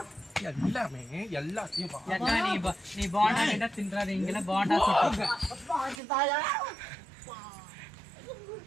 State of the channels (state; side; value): drops out; left; at 6.0 s